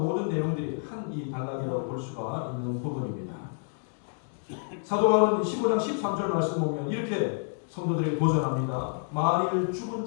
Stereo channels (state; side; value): silent; right; digital silence